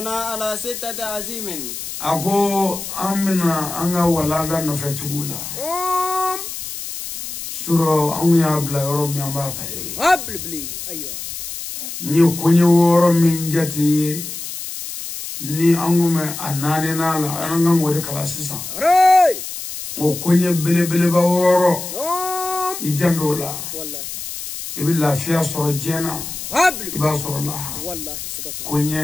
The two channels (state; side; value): noise; left; hiss, 8 dB below the sound